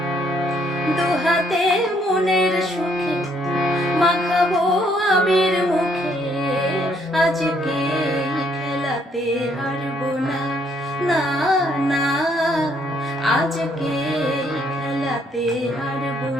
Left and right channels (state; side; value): normal; both; correlation 0.68